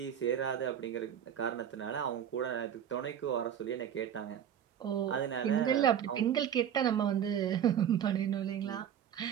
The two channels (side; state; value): left; quieter; 9.4 dB